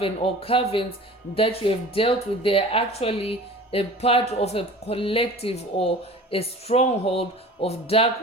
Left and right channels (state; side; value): normal; both; correlation 0.41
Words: or covens that you have dealt with, they're actually a part of a collective or a stronghold of dark